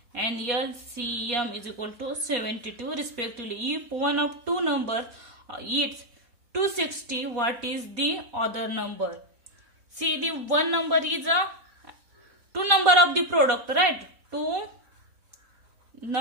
and LCM is equal to 72 respectively. If one of two numbers is 260, what is the other number? See, the one number is a two number of the product, right? Two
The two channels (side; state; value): left; late; 4.2 ms